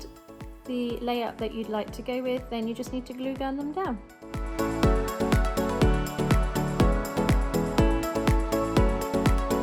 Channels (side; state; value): both; identical; correlation 1.00